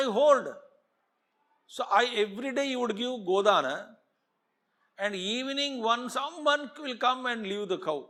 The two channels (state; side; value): identical; both; correlation 1.00